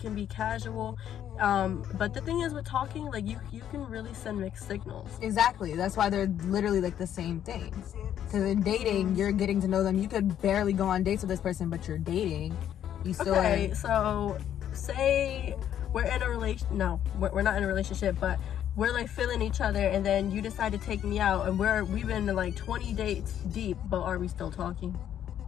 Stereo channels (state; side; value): quieter; right; 10.3 dB